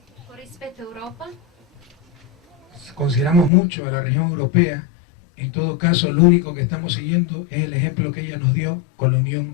Con rispetto a Europa, consideramos mucho a la región europea. En todo caso, lo único que estamos siguiendo es el ejemplo que ella nos dio con la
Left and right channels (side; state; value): right; drops out; at 3.5 s